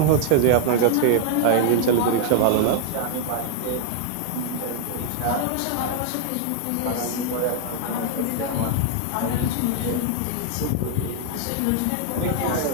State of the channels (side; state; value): both; different; correlation 0.00